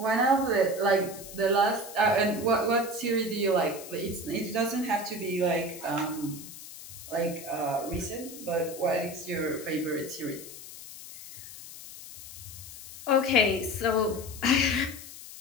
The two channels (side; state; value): left; noise; hiss, 14 dB below the sound